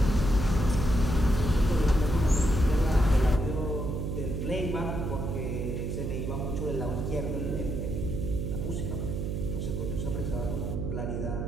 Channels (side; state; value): right; noise; hum, 2 dB below the sound